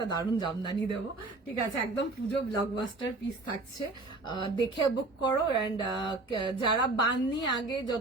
দারুণ জামদানি দেবো, ঠিক আছে? একদম পুজো ব্লকবাস্টার পিস থাকছে, দেখে বুক করো। অ্যান্ড যারা বান্নি আগে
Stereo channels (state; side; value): quieter; left; 3.2 dB